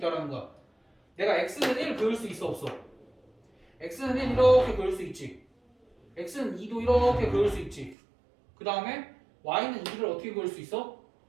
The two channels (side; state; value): left; drops out; at 8.0 s